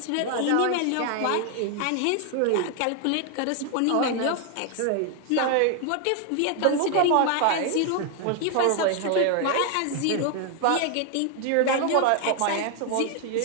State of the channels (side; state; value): both; different; correlation 0.00